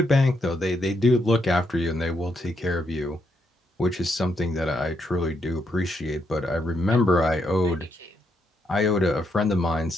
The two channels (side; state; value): both; normal; correlation 0.78